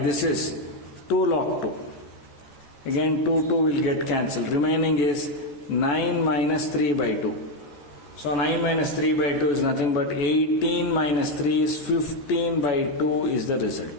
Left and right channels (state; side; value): late; right; 14 ms